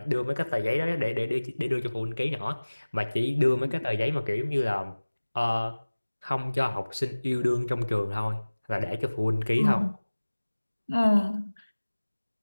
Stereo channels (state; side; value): inverted; both; correlation -1.00